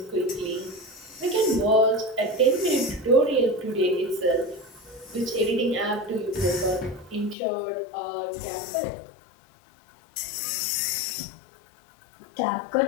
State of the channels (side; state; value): right; drops out; at 7.4 s